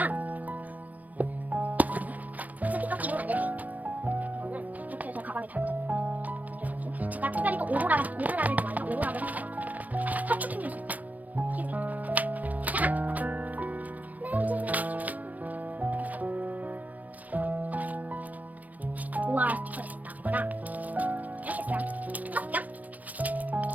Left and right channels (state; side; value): late; left; 0.076 ms